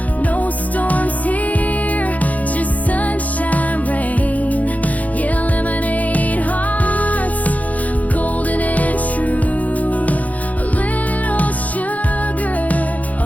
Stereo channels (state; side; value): late; right; 0.074 ms